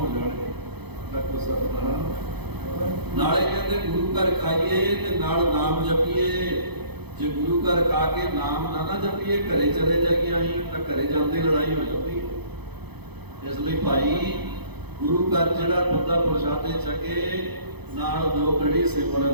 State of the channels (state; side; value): late; left; 0.98 ms